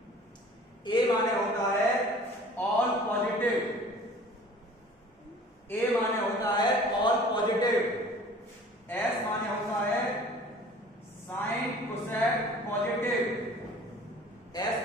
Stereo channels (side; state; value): both; normal; correlation 0.47